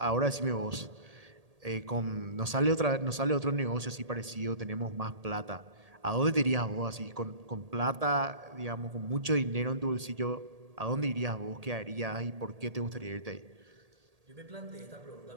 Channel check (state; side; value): late; left; 1.8 ms